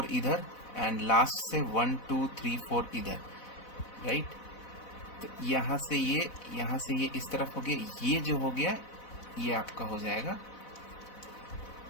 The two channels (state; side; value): late; right; 4.0 ms